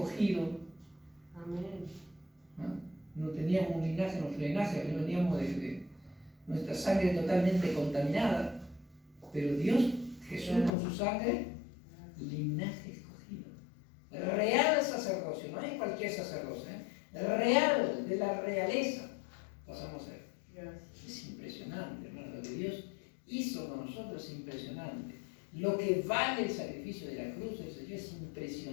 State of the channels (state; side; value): drops out; right; at 10.7 s